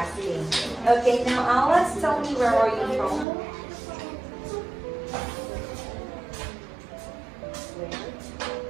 Okay, now Alex, tell me, where are you from?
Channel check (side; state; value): left; drops out; at 3.2 s